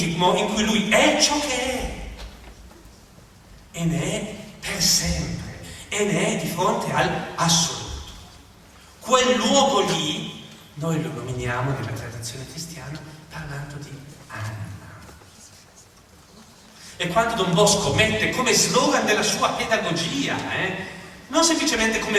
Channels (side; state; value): both; identical; correlation 1.00